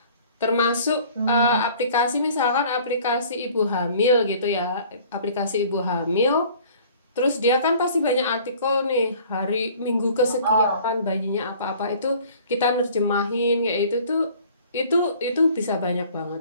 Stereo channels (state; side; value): inverted; both; correlation -0.51